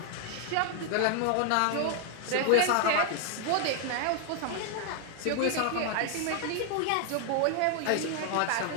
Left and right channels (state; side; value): different; both; correlation 0.00